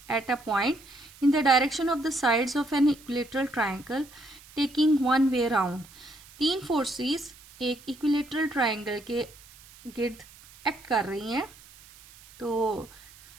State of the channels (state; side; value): noise; right; hiss, 23 dB below the sound